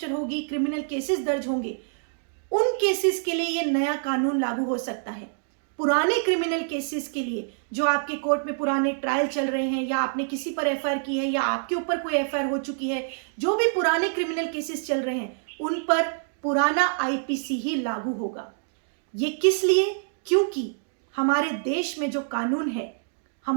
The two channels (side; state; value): left; silent; digital silence